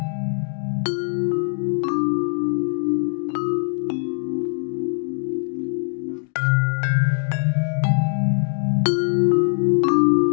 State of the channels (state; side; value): silent; right; digital silence